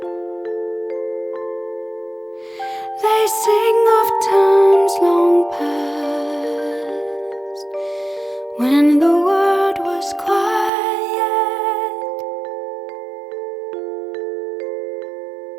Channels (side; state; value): left; drops out; at 10.7 s